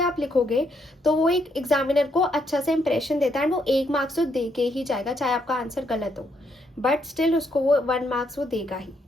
आप लिखोगे तो वो एक एग्जामिनर को अच्छा सा इंप्रेशन देता है एंड वो 1 मार्क्स तो दे के ही जाएगा, चाहे आपका आंसर गलत हो, बट स्टिल उसको वो 1 मार्क्स वो देगा ही।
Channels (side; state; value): both; normal; correlation 0.75